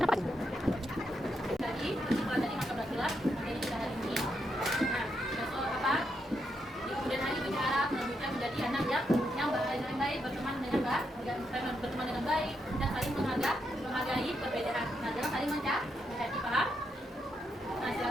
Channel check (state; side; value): normal; both; correlation 0.81